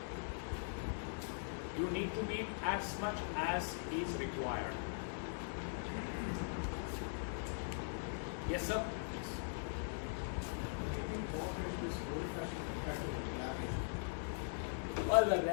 You need to be as much as is required. Yes, sir. Well,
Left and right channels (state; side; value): silent; right; digital silence